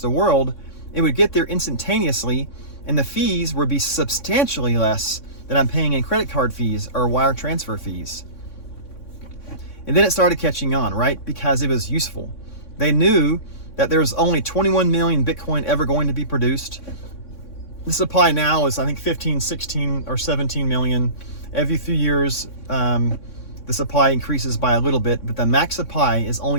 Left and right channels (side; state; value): right; late; 3.6 ms